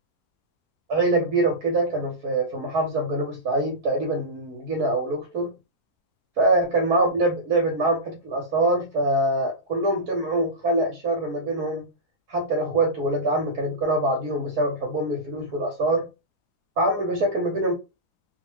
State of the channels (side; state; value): both; normal; correlation -0.16